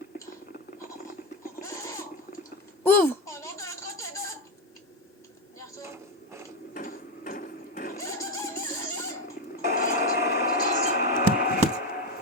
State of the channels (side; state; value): both; normal; correlation 0.13